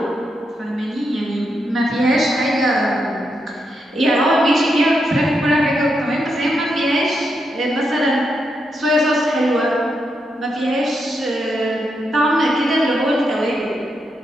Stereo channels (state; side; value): normal; both; correlation 0.83